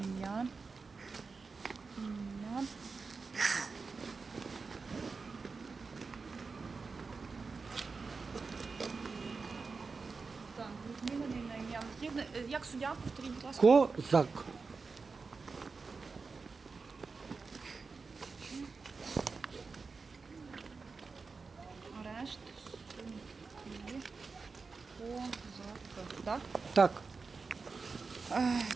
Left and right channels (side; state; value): left; quieter; 4.5 dB